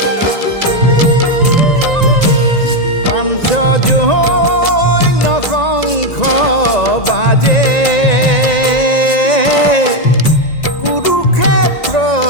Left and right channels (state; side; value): late; right; 1.9 ms